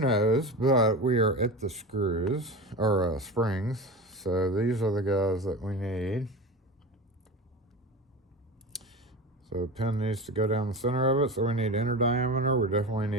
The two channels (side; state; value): both; normal; correlation 0.28